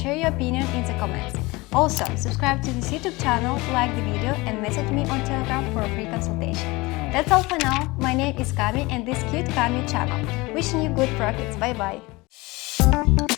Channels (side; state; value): right; quieter; 22.8 dB